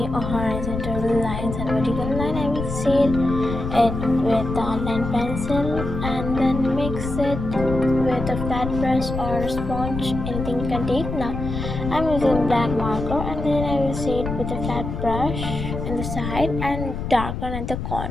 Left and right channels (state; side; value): noise; left; rumble, 5 dB below the sound